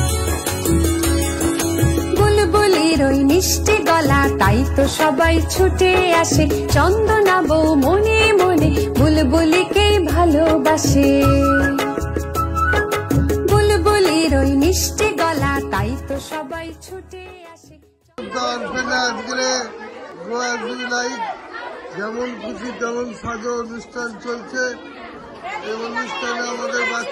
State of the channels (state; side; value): identical; both; correlation 1.00